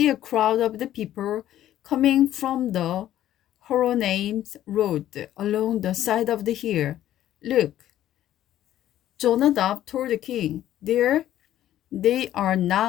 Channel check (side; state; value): right; quieter; 12.5 dB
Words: a crowd of the people coming from the Horonaim road along the side of the hill. Look." Jonadab told the king, "There they are